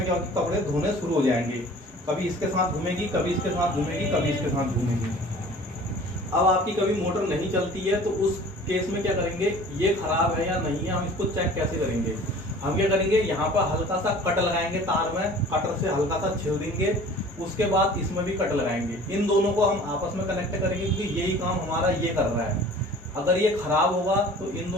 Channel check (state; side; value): normal; both; correlation 0.46